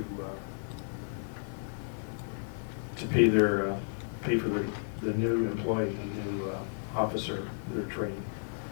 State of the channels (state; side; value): silent; right; digital silence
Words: to pay for the new employee, the new officer, their training.